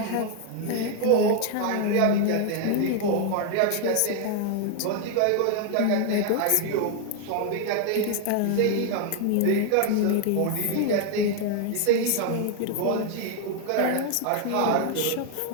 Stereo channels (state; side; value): different; both; correlation 0.00